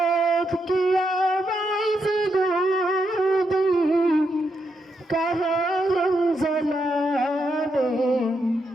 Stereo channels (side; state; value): both; normal; correlation 0.81